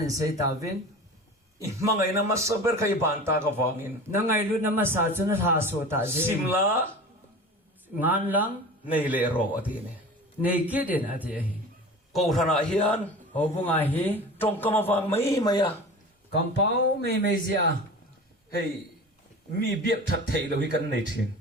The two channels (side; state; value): both; normal; correlation 0.36